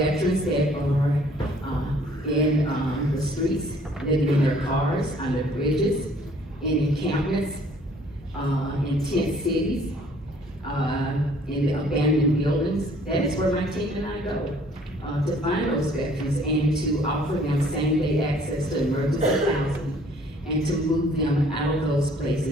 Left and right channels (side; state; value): both; normal; correlation 0.58